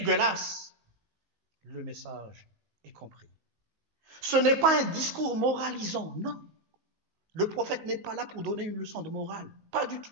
Le message est compris. Ce n'est pas un discours moralisant, non. Le prophète n'est pas là pour donner une leçon de morale, pas du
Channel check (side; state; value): left; late; 19 ms